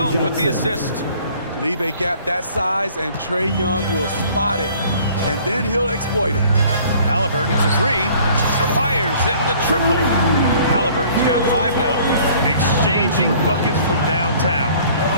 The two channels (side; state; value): both; inverted; correlation -0.54